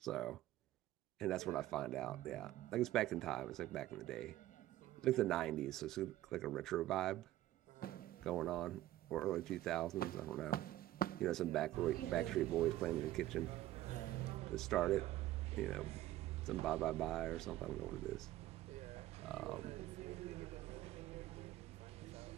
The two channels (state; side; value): quieter; left; 14.8 dB